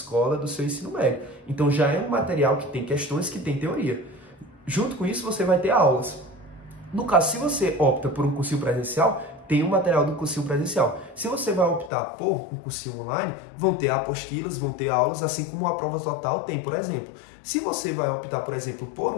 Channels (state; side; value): drops out; right; at 11.9 s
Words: do seu ensino médio. Então já é um material que tem questões, que tem teoria. Junto com isso você vai ter aulas. No caso, se você opta por um cursinho presencial, tem o material do cursinho presencial. Se você vai optar por um cursinho online, vão ter apostilas, vão ter aulas, assim como a prova total tem, por exemplo. Se você vai optar, por exemplo, por